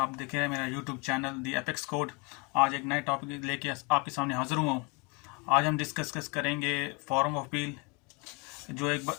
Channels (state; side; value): quieter; right; 28.7 dB